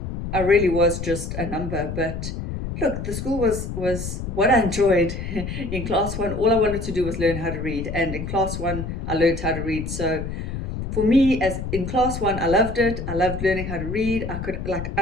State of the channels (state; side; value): noise; left; rumble, 6 dB below the sound